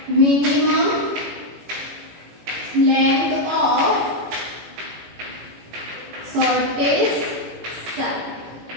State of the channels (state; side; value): late; left; 18 ms